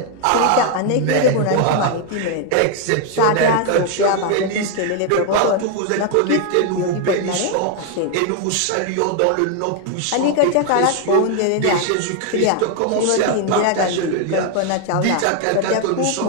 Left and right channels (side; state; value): both; different; correlation 0.01